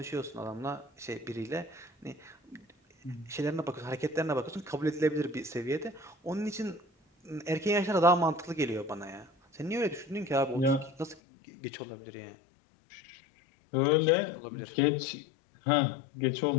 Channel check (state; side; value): drops out; right; at 11.2 s